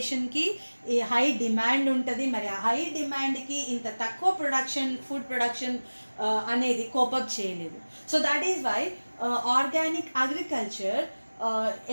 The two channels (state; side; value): inverted; both; correlation -1.00